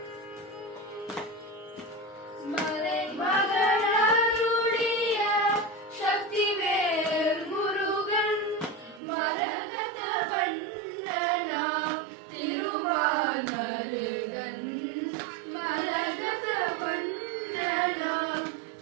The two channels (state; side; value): drops out; left; at 9.0 s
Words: மலை மகள் அருளிய சக்திவேல் முருகன் மரகத வண்ணனாம் திருமால் மருகன் மரகத வண்ணனாம்